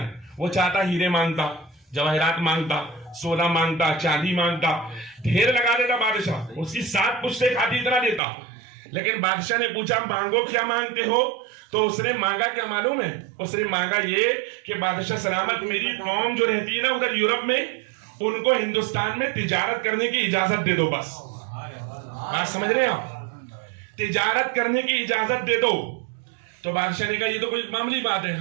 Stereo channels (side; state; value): left; drops out; at 8.2 s